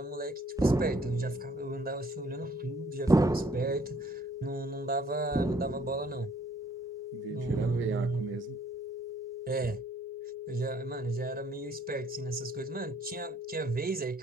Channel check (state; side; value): normal; both; correlation 0.63